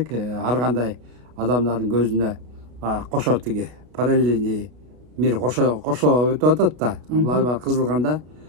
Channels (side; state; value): left; late; 33 ms